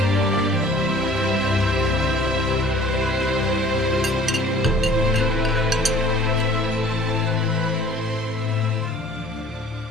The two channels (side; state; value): both; normal; correlation 0.52